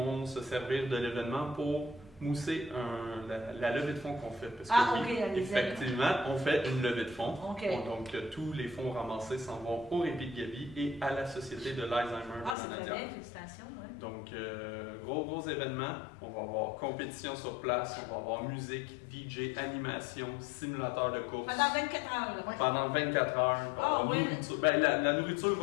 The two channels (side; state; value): right; drops out; at 12.6 s